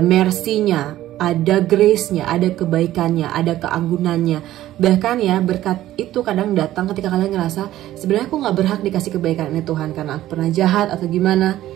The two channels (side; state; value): left; quieter; 14.1 dB